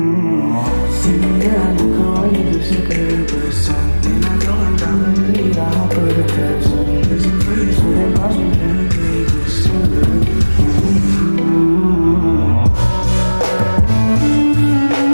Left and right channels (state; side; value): inverted; both; correlation -1.00